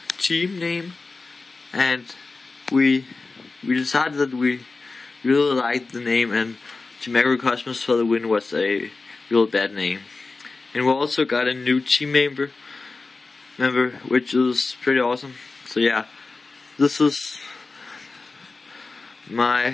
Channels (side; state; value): right; quieter; 3.8 dB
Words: team name, and we decided that we really liked the name, and Team Agrocosmos for the win was a real bad name. And we also got a new team member, which is pretty awesome. So yeah, this is